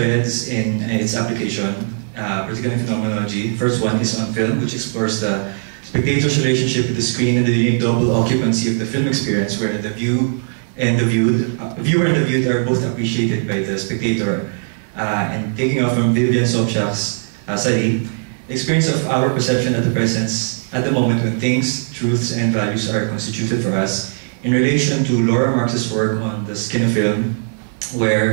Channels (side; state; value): left; silent; 56 dB below the other